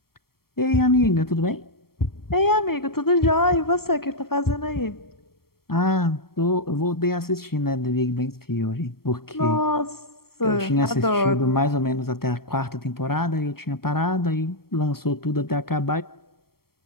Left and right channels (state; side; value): late; right; 0.94 ms